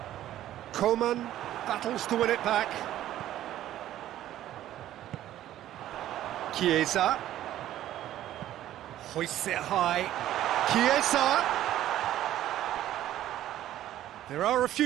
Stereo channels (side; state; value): left; quieter; 12.9 dB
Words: Coman battles to win it back. Chiesa. Hoists it high. Chiesa. There are a